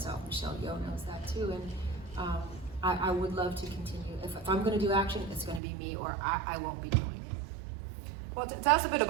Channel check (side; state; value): left; drops out; at 5.6 s